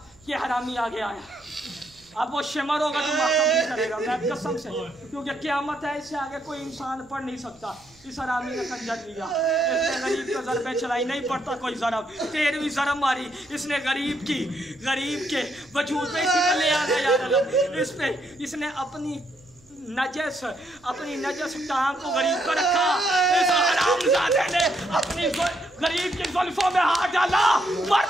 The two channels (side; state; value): right; noise; hum, 29 dB below the sound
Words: یہ حرامی آگے آیا. اب وہ شمر ہوگا تو ماتم نہیں کرے گا, میں قسم سے, کیونکہ قیامت ہے, اس سے آگے کوئی انسان پڑھ نہیں سکتا. اس حرامی نے خنجر لیا, اس نے غریب کو ضربیں چلائی. نہیں پڑتا کوئی ضرب, 13ویں ضرب ماری اس نے غریب کی, غریب کے وجود پہ اسی نے لے آنا یار علم. اس پہ اس نے اپنی نجس ٹانگ کو غریب کو رکھا. اس حرامزادے نے اپنی غریب کی زلفوں میں ہاتھ ڈالا.